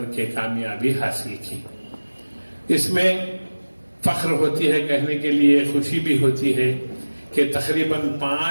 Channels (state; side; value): inverted; both; correlation -1.00